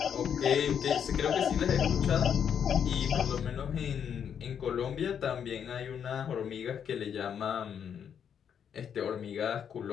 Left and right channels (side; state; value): right; quieter; 8.1 dB